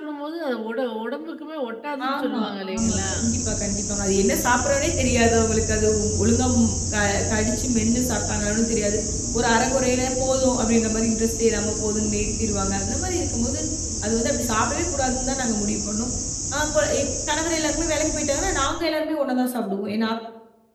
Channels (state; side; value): identical; both; correlation 1.00